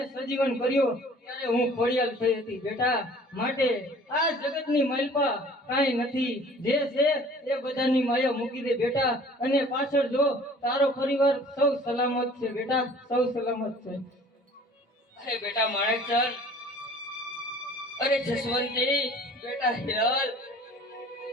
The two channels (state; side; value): normal; both; correlation 0.50